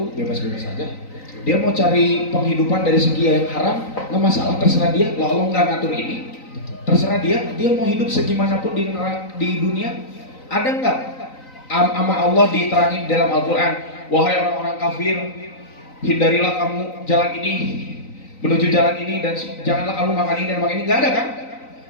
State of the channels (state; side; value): late; right; 3.9 ms